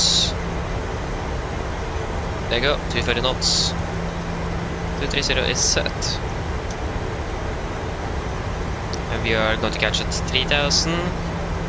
There you go, 230 knots. 230 is set. And we are going to catch at 3000,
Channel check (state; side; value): identical; both; correlation 1.00